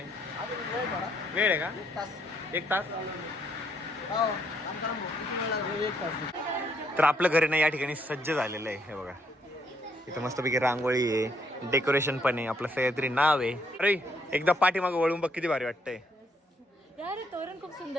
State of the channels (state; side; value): normal; both; correlation 0.71